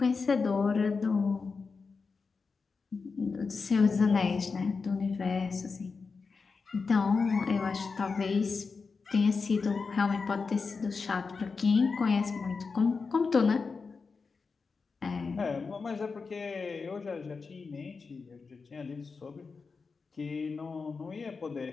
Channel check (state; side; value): quieter; right; 4.7 dB